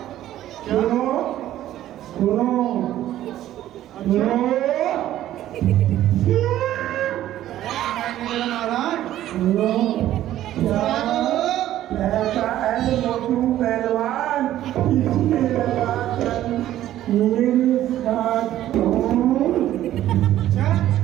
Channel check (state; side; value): quieter; left; 13.0 dB